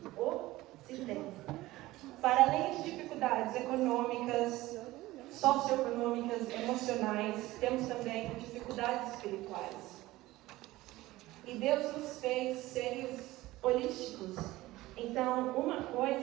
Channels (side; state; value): left; quieter; 17.9 dB